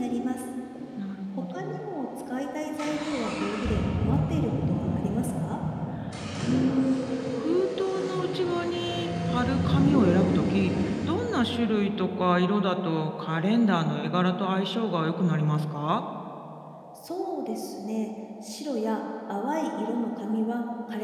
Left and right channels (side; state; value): both; identical; correlation 1.00